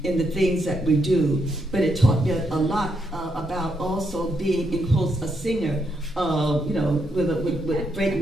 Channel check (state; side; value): normal; both; correlation 0.78